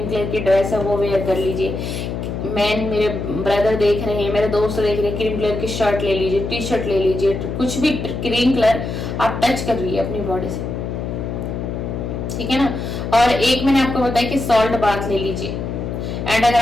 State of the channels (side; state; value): left; noise; hum, 4 dB below the sound